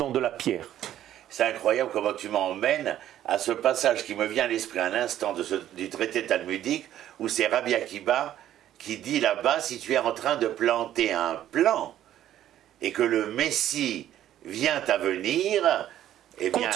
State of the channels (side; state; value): left; quieter; 12.0 dB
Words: de la pierre. C'est incroyable comment tu m'emmènes à ce passage qui me vient à l'esprit à l'instant du traité talmudique, où c'est Rabbi Akiba qui dit là-bas, si tu es en train de planter un plant, et que le Messie vient à venir, eh bien,